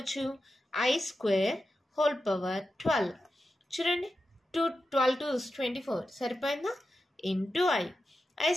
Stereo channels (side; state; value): both; normal; correlation 0.90